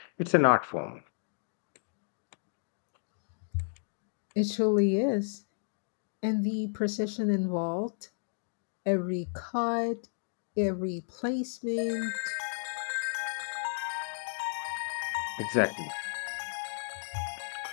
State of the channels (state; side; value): silent; right; digital silence